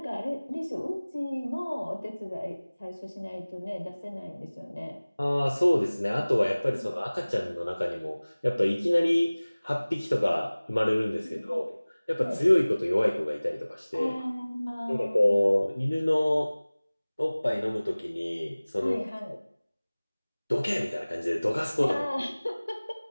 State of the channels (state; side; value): inverted; both; correlation -0.99